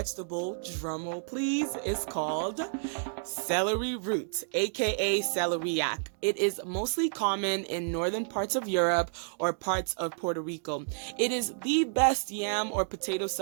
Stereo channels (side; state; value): left; silent; digital silence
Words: drumroll please, is called celery root, aka Celeriac. It is mostly common in northern parts of Europe or parts of Puerto Rico. It is the best yam or potato